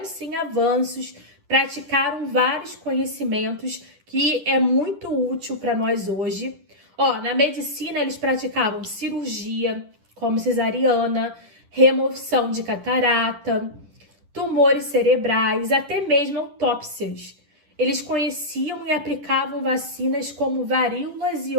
sim avanços, praticaram vários conhecimentos que é muito útil para nós hoje. Na medicina eles praticavam cirurgia, como cesariana, remoção de catarata, tumores cerebrais, até mesmo autópsias. Eles conheciam e aplicavam vacinas como varíolas e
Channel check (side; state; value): left; late; 10 ms